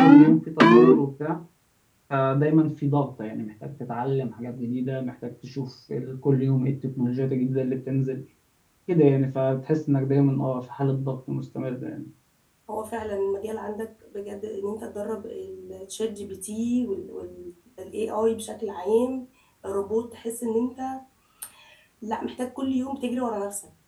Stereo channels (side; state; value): both; identical; correlation 1.00